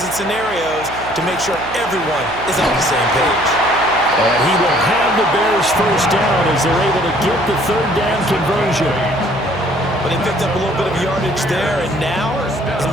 and scenarios to make sure everyone is on the same page. And he will have the Bears first down as they're able to get the third down conversion. But they picked up a little bit of yardage there, and now,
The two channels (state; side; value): noise; right; hum, 14 dB below the sound